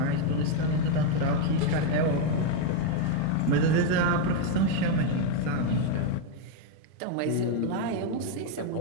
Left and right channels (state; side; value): different; both; correlation 0.01